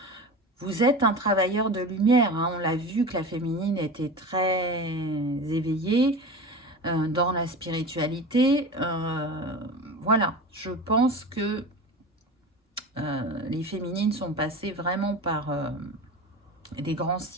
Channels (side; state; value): both; normal; correlation 0.31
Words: Vous êtes un travailleur de lumière, hein. On l'a vu que la féminine était très éveillée dans la spiritualité. Voilà, je pense que les féminines sont passées vraiment par des grands